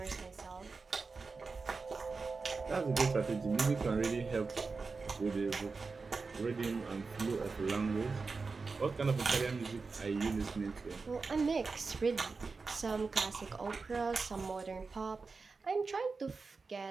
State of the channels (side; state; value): left; quieter; 4.4 dB